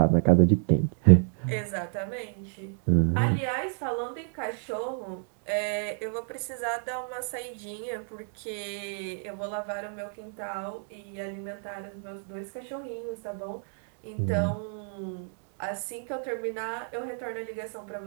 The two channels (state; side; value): silent; left; 58 dB below the other